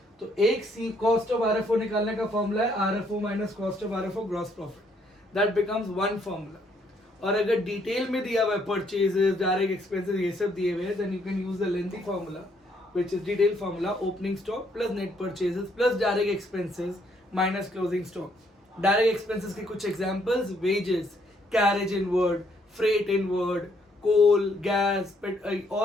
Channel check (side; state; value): both; normal; correlation 0.70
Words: तो एक सी cost of RFO निकालने का फॉर्मूला है RFO minus cost of RFO gross profit. That becomes one formula. और अगर डिटेल में दिया हुआ है परचेजेस, डायरेक्ट एक्सपेंसेस, ये सब दिए हुए हैं, then you can use the lengthy formula which is detailed formula opening stock plus net purchases plus direct expenses minus closing stock. Direct expenses के कुछ examples, wages, carriage inward, freight inward, coal, gas,